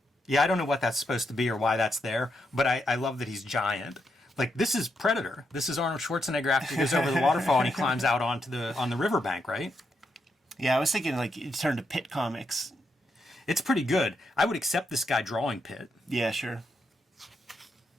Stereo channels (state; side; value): normal; both; correlation 0.81